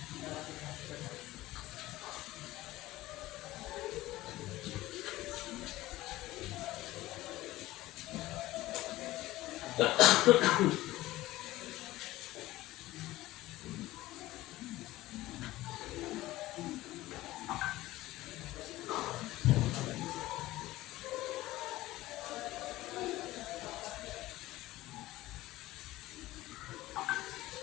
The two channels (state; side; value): quieter; right; 17.1 dB